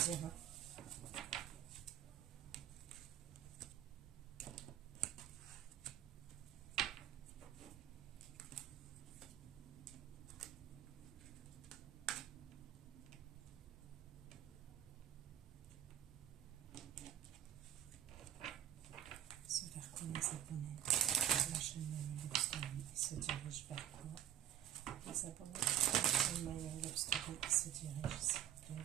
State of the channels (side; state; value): left; quieter; 11.3 dB